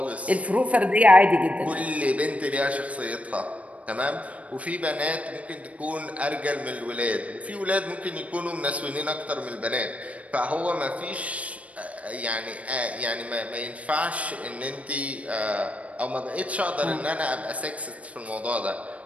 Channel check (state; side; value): late; left; 0.065 ms